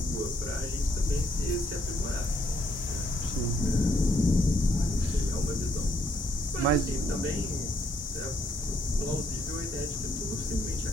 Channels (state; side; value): normal; both; correlation 0.72